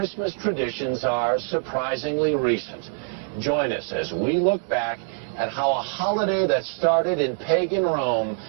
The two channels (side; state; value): left; silent; 62 dB below the other